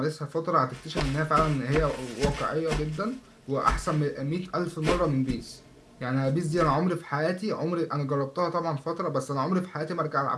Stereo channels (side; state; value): both; identical; correlation 1.00